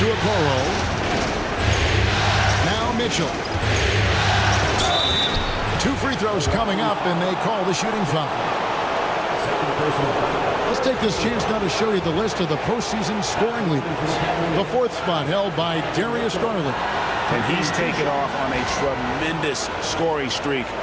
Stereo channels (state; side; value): identical; both; correlation 1.00